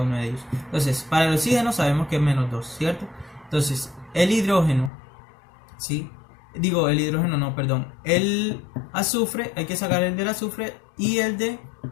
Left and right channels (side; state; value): right; drops out; at 4.9 s